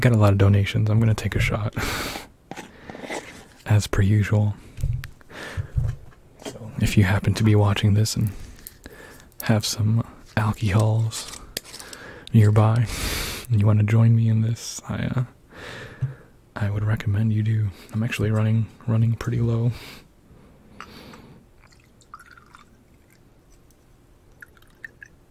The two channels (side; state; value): both; identical; correlation 1.00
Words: a lot of donations. I'm going to take a shot. As per usual. So if you happen to be watching this and have some alcohols nearby and you want to join me in this, I would recommend you do. I'm actually running pretty low.